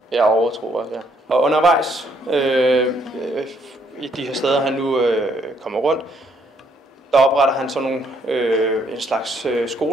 Ja, overtro også, ja. Og undervejs i de her steder, han nu kommer rundt, der opretter han sådan nogle en slags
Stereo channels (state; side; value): normal; both; correlation 0.69